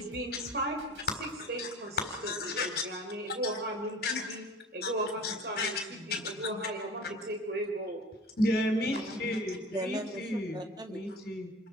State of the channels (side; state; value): both; normal; correlation 0.39